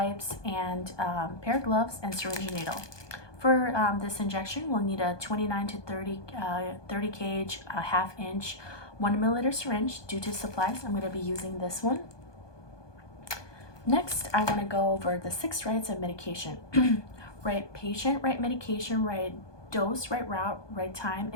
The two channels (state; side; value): late; right; 1.2 ms